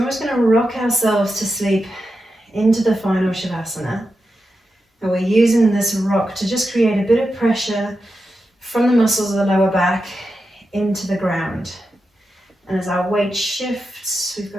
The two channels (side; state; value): both; normal; correlation 0.89